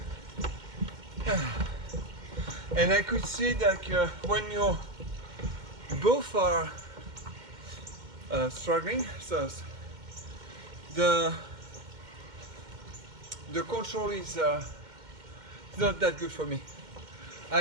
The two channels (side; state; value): left; late; 2.1 ms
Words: And I could see that when you both are struggling, so the control is not that good for me.